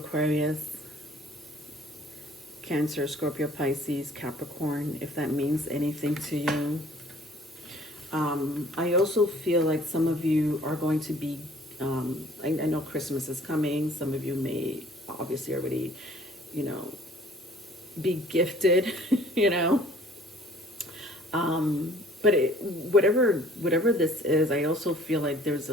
Cancer, Scorpio, Pisces, Capricorn, if that means anything to you. I also feel like some of you are going to be, I know Christmas is coming. Some of you may obviously already, you know, be gifted, you know. But whatever this is, I also feel like there's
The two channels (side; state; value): both; normal; correlation 0.55